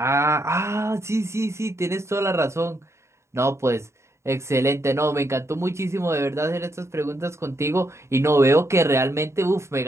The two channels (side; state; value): left; late; 0.13 ms